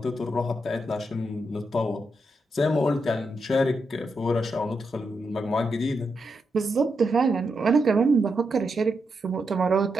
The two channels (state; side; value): normal; both; correlation 0.84